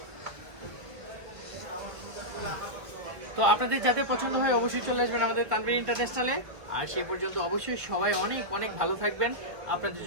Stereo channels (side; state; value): left; late; 1.6 ms